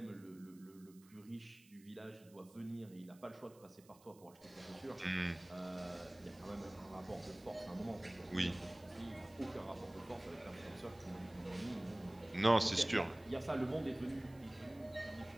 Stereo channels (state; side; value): noise; right; hiss, 25 dB below the sound